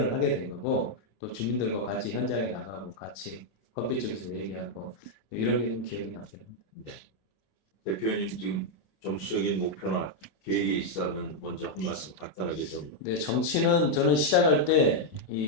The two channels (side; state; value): right; late; 27 ms